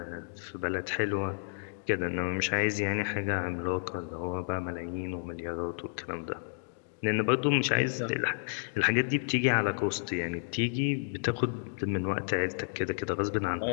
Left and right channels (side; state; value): right; silent; digital silence